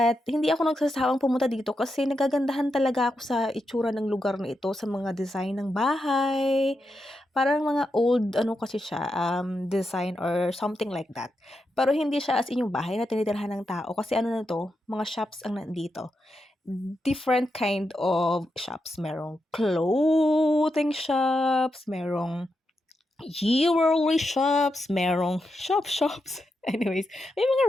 hindi ako nagsasawang pumunta dito kasi nagagandahan talaga ako sa itsura ng lugar na ito, sa mga design ng bahay. Parang mga old, kasi siya, design or something like that. Pero hindi siya as in yung bahay na tinitirhan ng tao kasi na to, mga shops ang nandito. Different kind of shops. Merong clothing shops, merong jewelry shops, merong shops. Anyways, may mga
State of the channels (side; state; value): both; normal; correlation 0.86